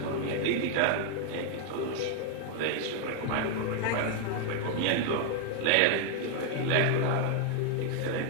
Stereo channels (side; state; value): both; different; correlation 0.00